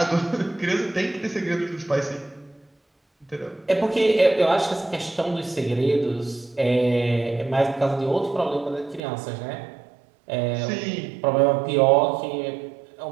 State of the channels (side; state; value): left; drops out; at 9.0 s